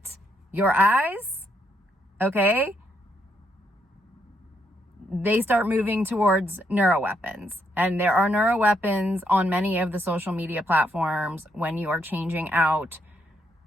your eyes, okay, they start moving towards neuroweapons. And there are neuroweapons on many of the social media platforms when you are changing out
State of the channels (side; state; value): both; normal; correlation 0.76